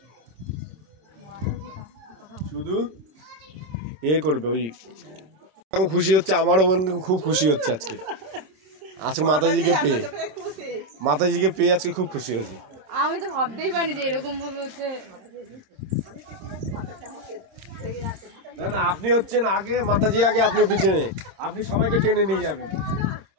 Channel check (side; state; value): left; late; 27 ms